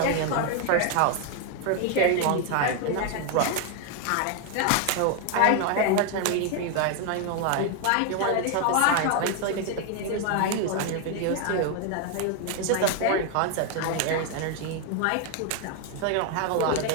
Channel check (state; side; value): different; both; correlation 0.01